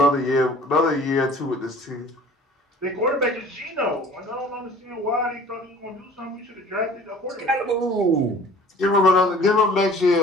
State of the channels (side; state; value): both; normal; correlation 0.48